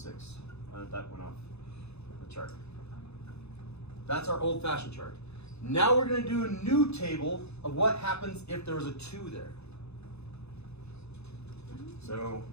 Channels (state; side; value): late; right; 0.80 ms